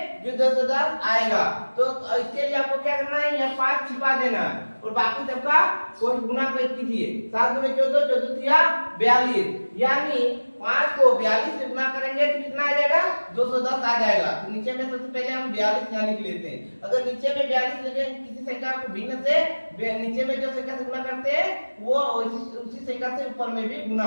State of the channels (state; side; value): inverted; both; correlation -1.00